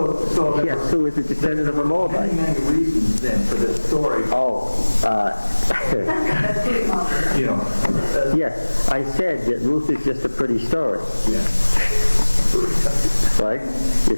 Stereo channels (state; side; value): inverted; both; correlation -1.00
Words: there Yes, who is a descendant of a were Moabite? many reasons then for this story. You know, Yes, I said that Ruth is just a pretty story, right?